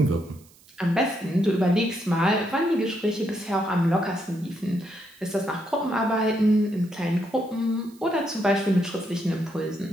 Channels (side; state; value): right; noise; hiss, 27 dB below the sound